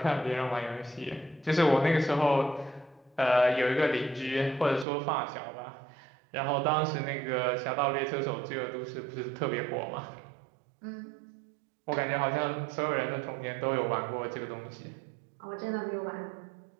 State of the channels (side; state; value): left; drops out; at 4.9 s